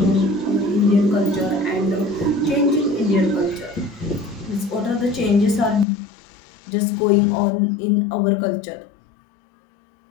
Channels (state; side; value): drops out; right; at 5.9 s